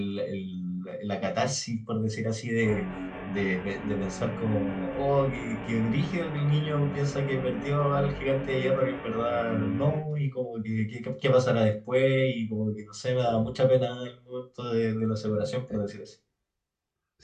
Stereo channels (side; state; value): both; identical; correlation 1.00